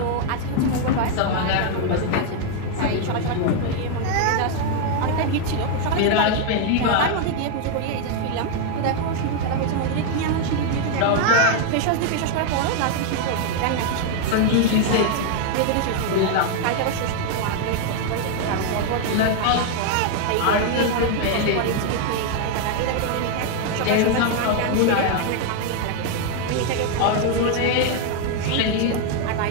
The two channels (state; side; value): different; both; correlation 0.00